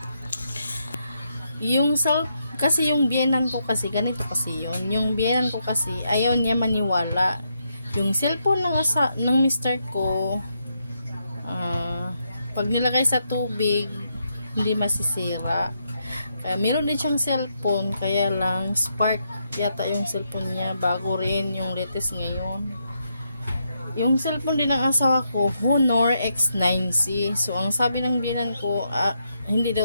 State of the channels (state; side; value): inverted; both; correlation -0.80